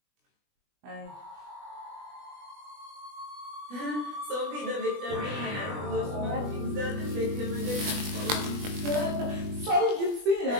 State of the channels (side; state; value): left; late; 20 ms